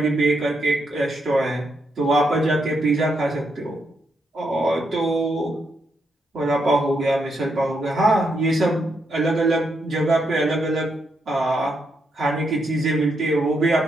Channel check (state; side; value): normal; both; correlation 0.80